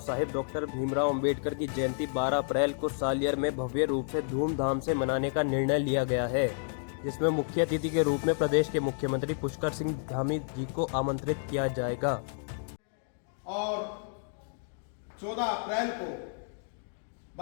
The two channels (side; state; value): right; silent; digital silence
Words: साहेब डॉक्टर भीमराव अंबेडकर की जयंती 12 अप्रैल को सालियर में भव्य रूप से धूमधाम से मनाने का निर्णय लिया गया है, जिसमें मुख्य अतिथि के रूप में प्रदेश के मुख्यमंत्री पुष्कर सिंह धामी जी को आमंत्रित किया जाएगा। और 14 अप्रैल को